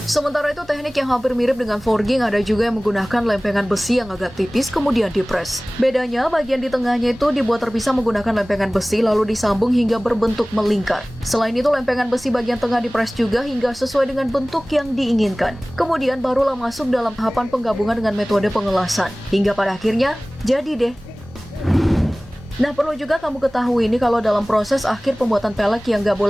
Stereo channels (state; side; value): noise; right; hum, 27 dB below the sound